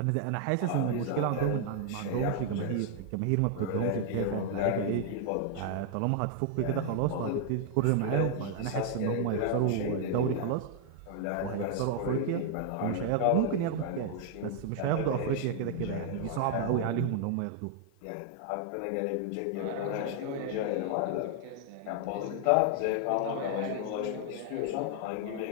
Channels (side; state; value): both; different; correlation 0.00